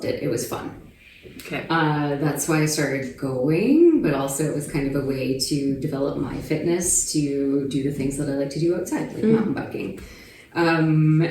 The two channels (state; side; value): identical; both; correlation 1.00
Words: it. It was fun. Okay. That's why I started going, but also it was kind of a way to develop my fitness to do the things that I like to do outside, like mountain biking. And